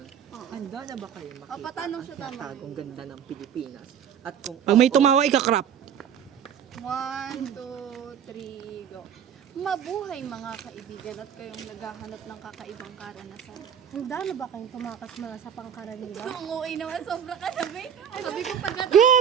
Karaniwan. Handa na ba kayo makita patanong siya tama. tagong ganda ng Pilipinas? At kung Pag may tumawa, ikakrap. 1, 2, 3, go. Mabuhay mga kaibigan at kayong naghahanap ng kakaibang karanasan. Handa na ba kayong tumakas mula sa pangkaraniwan? Ang uwi naman, sobra ka sabi. Sabi ko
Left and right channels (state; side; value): quieter; left; 8.6 dB